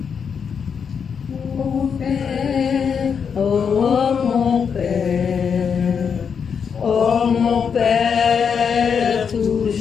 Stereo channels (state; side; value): quieter; right; 6.7 dB